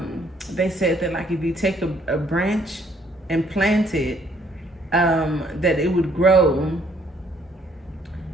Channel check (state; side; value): normal; both; correlation 0.66